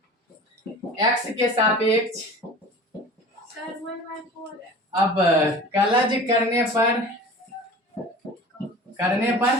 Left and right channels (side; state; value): both; normal; correlation 0.39